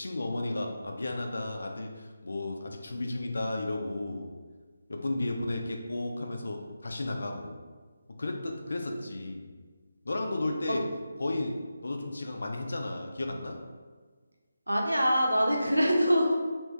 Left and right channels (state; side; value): inverted; both; correlation -0.92